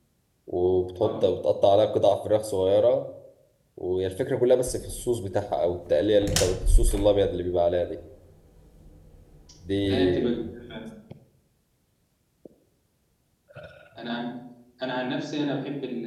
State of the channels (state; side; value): identical; both; correlation 1.00